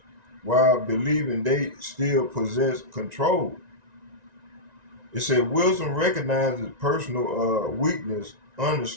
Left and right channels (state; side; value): late; left; 1.9 ms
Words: while believing they still possess control. It said wisdom recognizes personal weakness